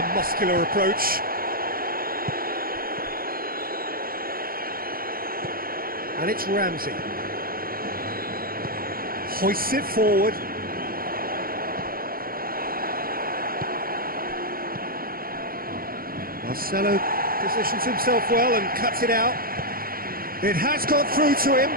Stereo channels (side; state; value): left; late; 0.42 ms